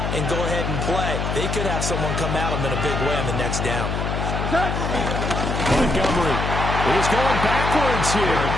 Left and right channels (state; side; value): noise; left; hum, 2 dB below the sound